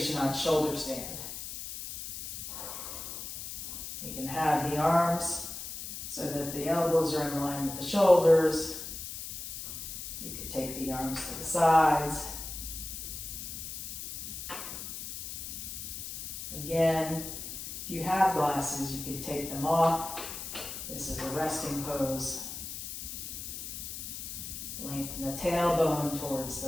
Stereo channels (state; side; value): noise; left; hiss, 8 dB below the sound